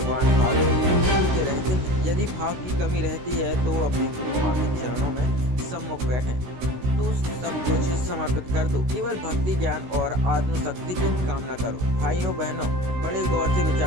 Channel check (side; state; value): left; late; 16 ms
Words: भाव के रहते हैं। यदि भाव की कमी रहती है तो अपने गुरु माँ के चरणों में सम्मुख बैठे तो सब कुछ समर्पित कर दो। केवल भक्ति ज्ञान और आत्मशक्ति की कामना करो। भाइयों बहनों, बड़े गौर से